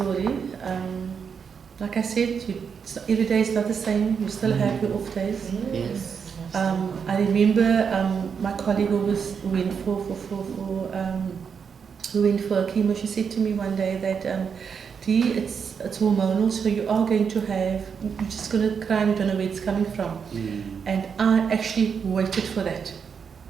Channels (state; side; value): quieter; left; 6.5 dB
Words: Like I said, every day is not the same. You still have your off days. Yes. I remember my colleague who went for chemo. She said to me one day that, Dee, it's hormonal, so you are going to have, you're just going to cry and you don't know where it's coming from. And I actually waited for that.